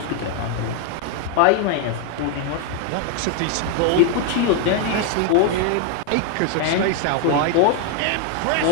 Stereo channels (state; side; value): different; both; correlation 0.01